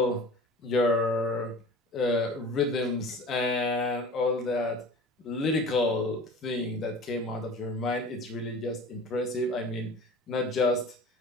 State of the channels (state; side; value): normal; both; correlation 0.40